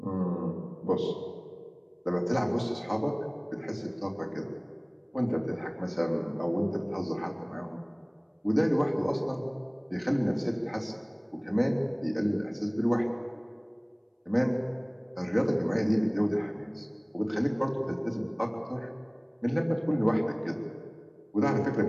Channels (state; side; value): identical; both; correlation 1.00